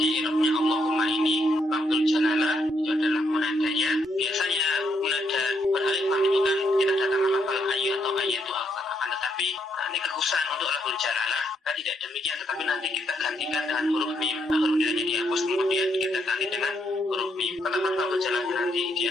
irobnya Allahumma ini lafzul jalalah itu adalah munadanya. Biasanya munada beralif lam itu kan tidak datang lafal ayu atau ayatu, akan tetapi ini kekhususan untuk lafzul jalalah. Tidak demikian, tetapi nanti kita gantikan dengan huruf mim. Huruf nidanya dihapus, kemudian kita ganti dengan huruf mim. Kata-kata lafzul jalalah nanti dia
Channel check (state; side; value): normal; both; correlation 0.75